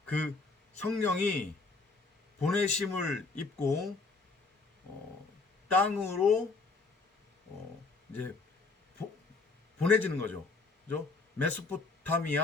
그 성령이 보내심을 입고 땅으로 이제 보내지는 거죠. 그죠?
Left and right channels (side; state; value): right; quieter; 3.9 dB